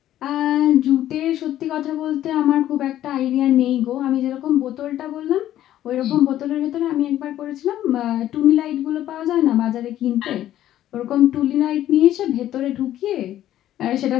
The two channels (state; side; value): quieter; right; 12.6 dB